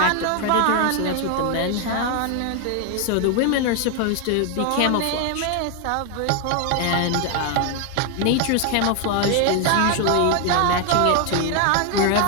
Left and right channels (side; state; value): both; different; correlation 0.01